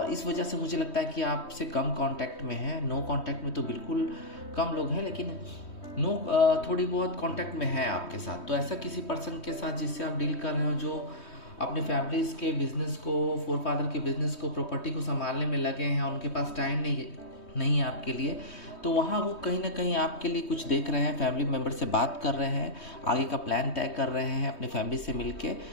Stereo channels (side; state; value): right; late; 3.2 ms